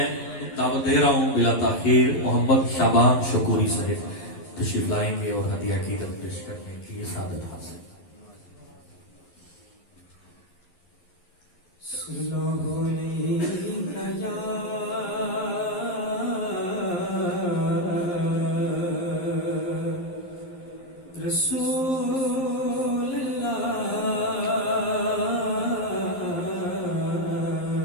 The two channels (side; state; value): right; late; 11 ms